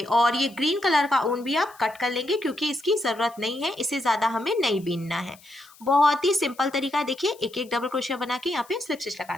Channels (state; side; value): noise; left; hiss, 25 dB below the sound